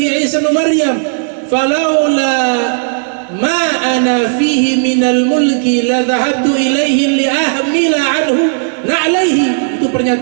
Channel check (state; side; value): silent; left; digital silence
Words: Isa bin Maryam falaula ma ana fihi minal mulki la dhahabtu ilaihi li ahmila anhu na'laihi. Itu